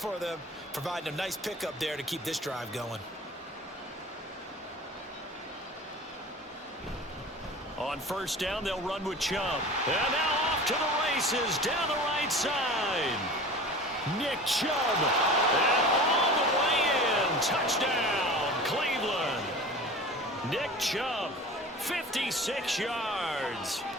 them, providing a nice pickup there to keep this drive going. On 1st down, they'll run with Chubb. And now off to the races down the right side. Nick Chubb. And all the way in. Touchdown, Cleveland. Nick Chubb, 56 yards.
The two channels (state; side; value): normal; both; correlation 0.38